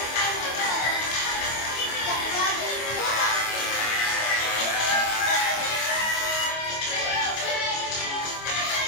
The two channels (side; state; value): right; late; 25 ms